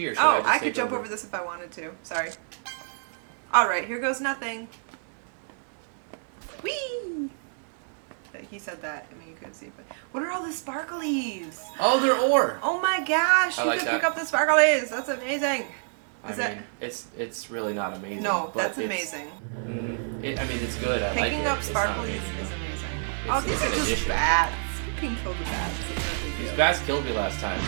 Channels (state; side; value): silent; left; digital silence